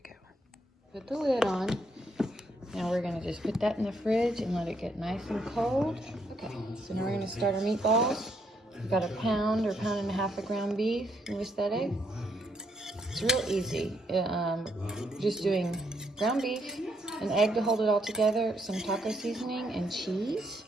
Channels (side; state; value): both; normal; correlation 0.74